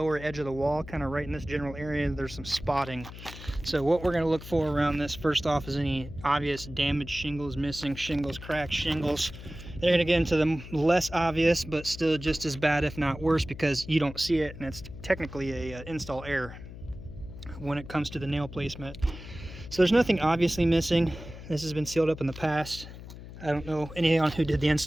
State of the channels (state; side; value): noise; left; hum, 14 dB below the sound